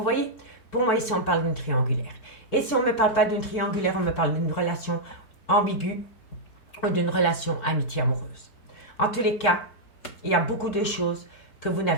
voyez? Pour moi, ici, on parle d'une triangulaire. Et si on ne me parle pas d'une triangulaire, on me parle d'une relation ambiguë ou d'une relation amitié-amoureuse. En tous les cas, il y a beaucoup de choses que vous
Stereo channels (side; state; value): right; late; 4.6 ms